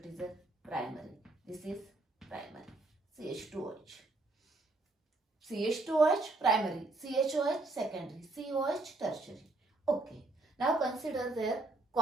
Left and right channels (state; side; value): quieter; left; 3.1 dB